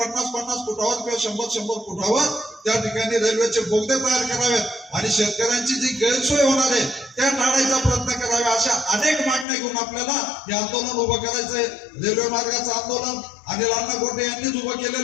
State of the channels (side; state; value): right; drops out; at 9.5 s